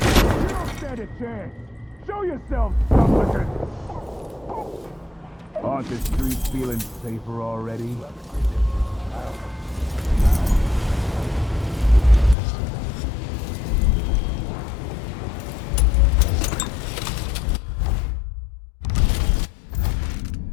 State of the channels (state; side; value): drops out; right; at 12.4 s